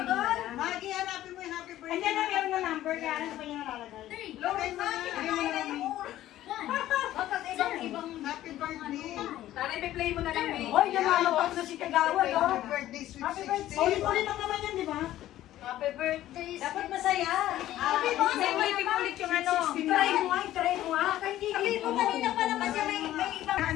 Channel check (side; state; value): right; quieter; 13.8 dB